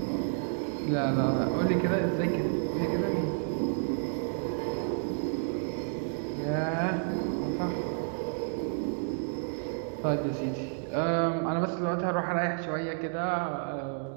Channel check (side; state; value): left; silent; digital silence